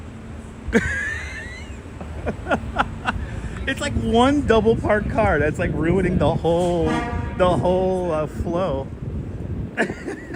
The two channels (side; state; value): both; identical; correlation 1.00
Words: It's like one double parked car that's like ruining the whole flow.